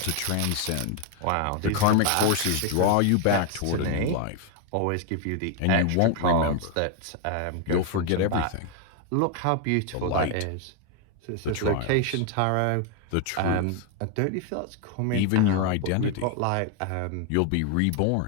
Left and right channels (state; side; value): different; both; correlation 0.00